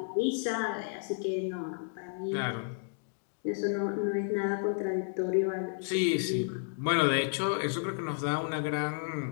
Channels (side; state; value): right; silent; digital silence